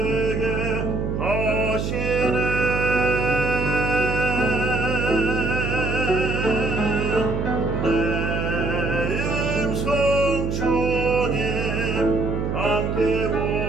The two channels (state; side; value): noise; right; hum, 2 dB below the sound